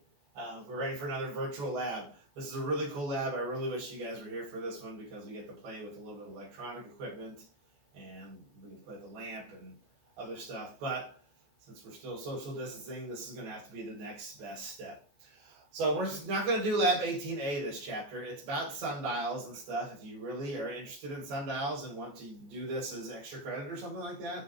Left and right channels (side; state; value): left; late; 14 ms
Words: We're ready for another virtual lab. This is a really cool lab. I really wish you guys were here for this one because we get to play with a little bit of electronic equipment and we can play with the lamp and other stuff. But since we're still social distancing, this is going to have to be the next best step. So we're not going to do Lab 18A this chapter. It's about sundials and stuff. If you really are interested in sundials and want to do this as extra credit or something like